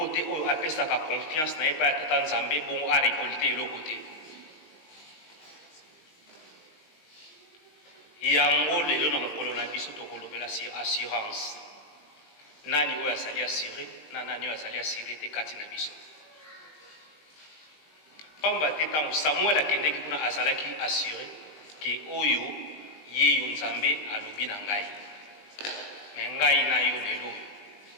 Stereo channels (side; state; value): right; late; 19 ms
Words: te oyo apesaka confiance na ye pa ya tata Nzambe bongo a récolté eloko te. Yango lelo na mokolo na biso tokolobela assurance. Nani oyo azali assuré na nani oyo azali assuré te kati na biso. Pamba te ntango Samuel akendeki kuna azalaki assuré ke oyo ye yo Nzambe alobi na ngai. Me ngai na yo lelo